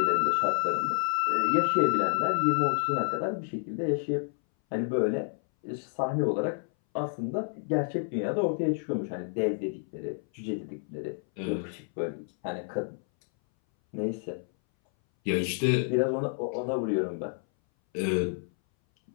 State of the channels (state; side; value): silent; right; 58 dB below the other